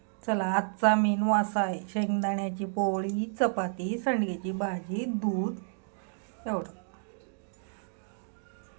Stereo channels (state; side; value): silent; left; digital silence